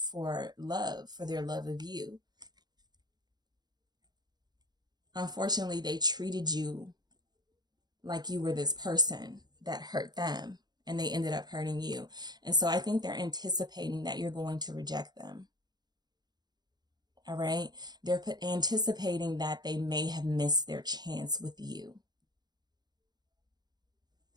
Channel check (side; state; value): left; late; 0.20 ms